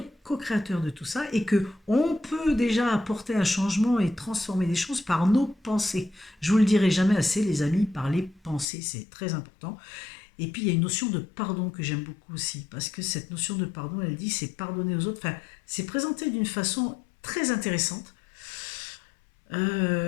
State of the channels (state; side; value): drops out; right; at 8.7 s